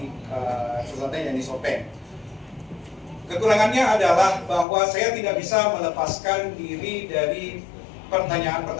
Selatan yang di Sopeng. Kekurangannya adalah bahwa saya tidak bisa melepaskan diri dari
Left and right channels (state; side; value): drops out; right; at 4.7 s